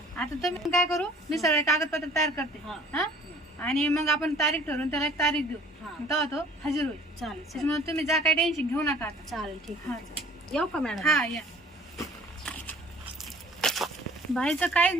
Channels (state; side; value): normal; both; correlation 0.50